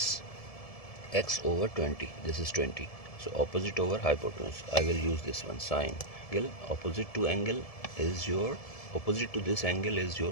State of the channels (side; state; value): right; late; 1.7 ms